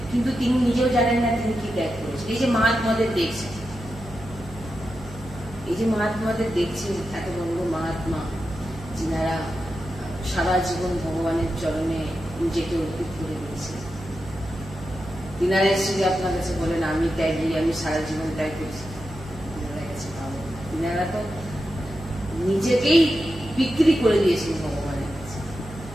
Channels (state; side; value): noise; right; hum, 15 dB below the sound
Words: কিন্তু তিনি নিজেও জানেন না তিনি কি ত্যাগ করেছেন। এই যে মহাত্মাদের দেখছেন, এত বড় মহাত্মা, যিনারা সারা জীবন ভগবানের চরণে নিজেকে অর্পিত করে দিয়েছেন, তিনারা এসে যে আপনার কাছে বলেন আমি ত্যাগী, আমি সারা জীবন ত্যাগ করছি, তিনারা তো নিজেকেই বিক্রি করে দিয়েছেন ভগবানের কাছে।